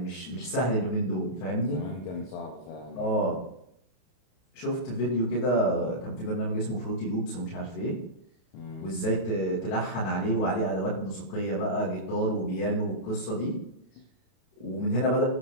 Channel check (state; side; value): late; right; 32 ms